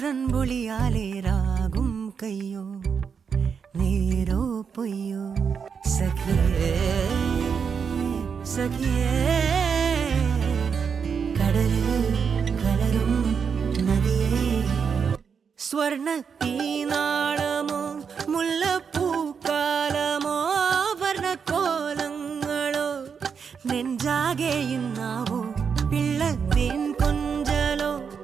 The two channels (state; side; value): quieter; left; 6.4 dB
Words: രാഗും കയ്യോ നേരോ പൊയ്യോ സഖിയേ കടലിൽ കലരും നദിയേ സ്വർണ്ണത്തീനാളമോ മുല്ലപ്പൂക്കാലമോ വർണ്ണക്കോലങ്ങളോ നെഞ്ചാകെയുന്നാവോ പിള്ളത്തേൻ കൊഞ്ചലോ